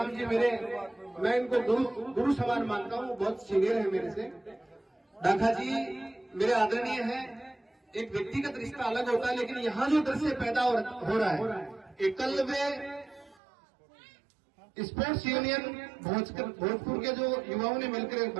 जी मैं इनको गुरु समान मानता हूँ, बहुत सीनियर है मेरे से। ढाका जी मेरे आदरणीय हैं। एक व्यक्तिगत रिश्ता अलग होता है, लेकिन यहाँ जो दृश्य पैदा हो रहा है, एकलव्य स्पोर्ट्स यूनियन भोजपुर के जो युवाओं ने मिलकर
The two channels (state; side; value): drops out; left; at 13.4 s